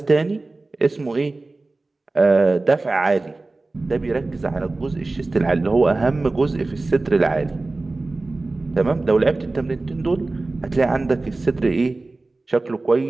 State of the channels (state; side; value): quieter; left; 3.2 dB